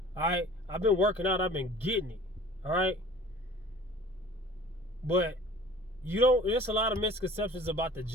All right, I've been working out. I've been getting it. All right, but there's a lot of misconceptions about the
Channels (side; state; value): both; normal; correlation 0.44